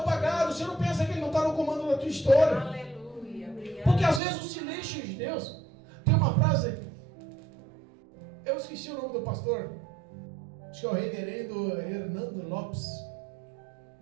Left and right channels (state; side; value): drops out; left; at 4.2 s